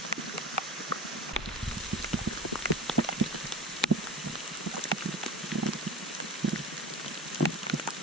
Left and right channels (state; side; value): normal; both; correlation 0.34